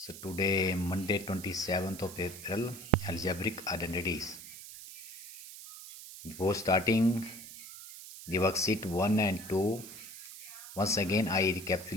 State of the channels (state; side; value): noise; right; hiss, 14 dB below the sound